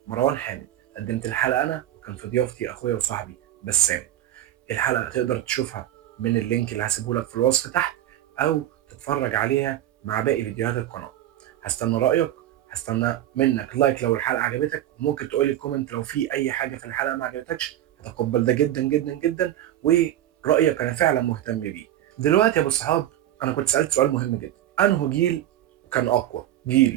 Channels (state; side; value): quieter; left; 12.5 dB